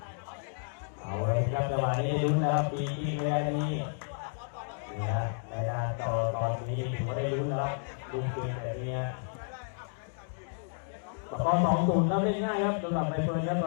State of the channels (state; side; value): silent; right; digital silence